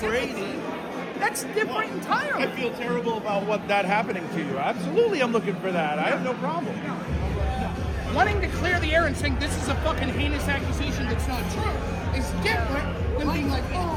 sympathy. That's different entirely. I feel terrible about what that happening to you. Absolutely, I'm looking for that. I have no problem. Wanting to clear the air and saying this is a fucking heinous accusation that's not true is different than being like,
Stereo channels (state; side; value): identical; both; correlation 1.00